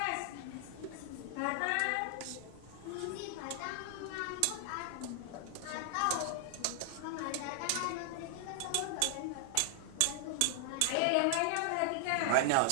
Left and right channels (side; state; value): both; different; correlation -0.01